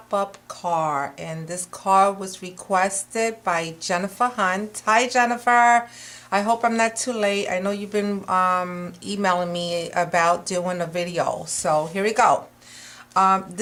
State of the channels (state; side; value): identical; both; correlation 1.00